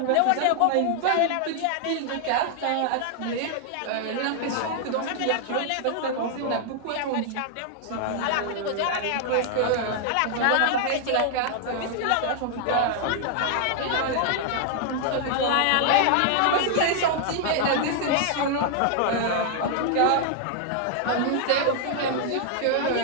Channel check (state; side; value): different; both; correlation 0.00